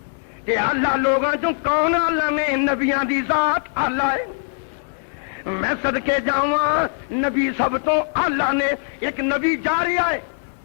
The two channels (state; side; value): silent; right; 61 dB below the other